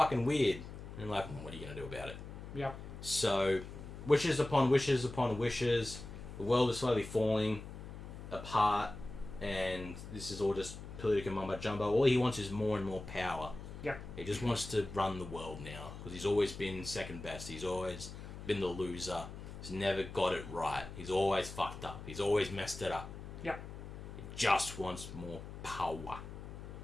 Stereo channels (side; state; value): left; noise; hum, 11 dB below the sound